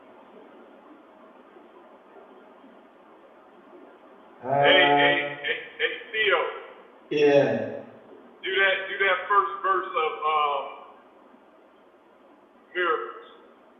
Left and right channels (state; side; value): identical; both; correlation 1.00